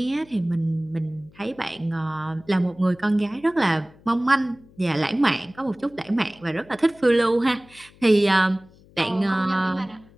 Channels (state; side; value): noise; left; hum, 26 dB below the sound